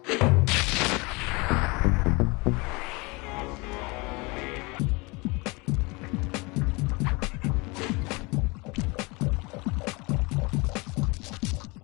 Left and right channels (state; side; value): quieter; right; 26.6 dB